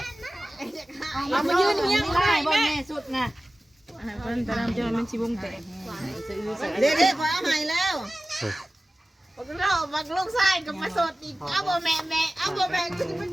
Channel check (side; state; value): both; normal; correlation 0.96